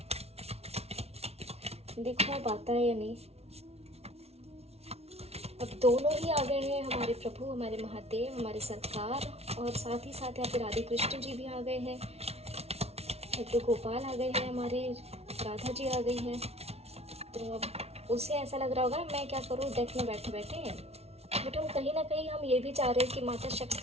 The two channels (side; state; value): left; late; 0.30 ms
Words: देखो अब आता है या नहीं। अब दोनों ही आ गए हैं, हमारे प्रभु, हमारे महादेव, हमारे सरकार, और साथ ही साथ यहाँ पे राधे कृष्ण जी भी आ गए हैं, लड्डू गोपाल आ गए हैं, हमारे राधा जी आ गई हैं। तो अब उसे ऐसा लग रहा होगा मैं क्या करूँ डेक में बैठे बैठे, बट हम कहीं ना कहीं हम ये भी चाह रहे हैं कि माता